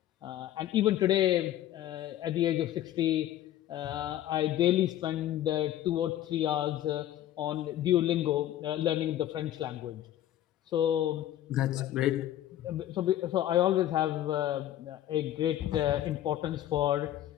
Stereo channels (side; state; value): right; quieter; 12.6 dB